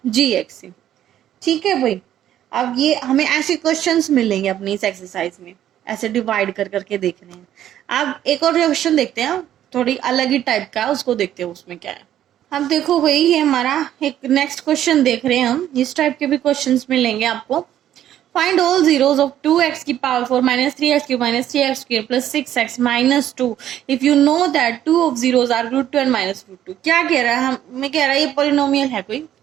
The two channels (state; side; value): quieter; left; 11.5 dB